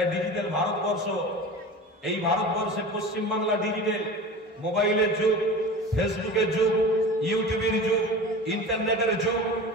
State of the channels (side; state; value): both; normal; correlation 0.34